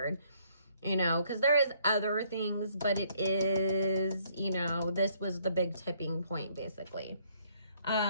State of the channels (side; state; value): both; inverted; correlation -0.67